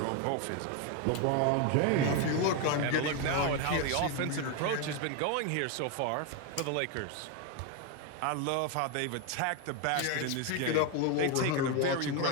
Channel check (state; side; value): different; both; correlation 0.02